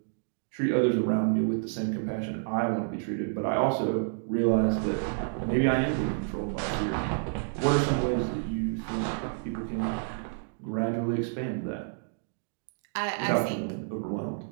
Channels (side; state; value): left; silent; digital silence